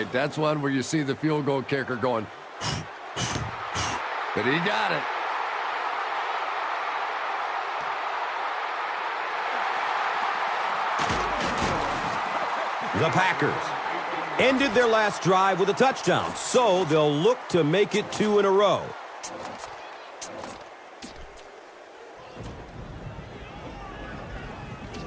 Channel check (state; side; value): identical; both; correlation 1.00